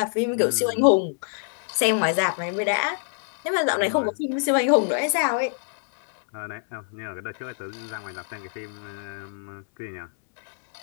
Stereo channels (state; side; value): silent; right; 61 dB below the other